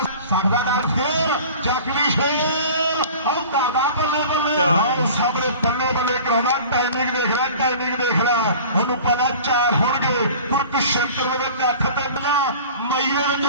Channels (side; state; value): both; inverted; correlation -0.42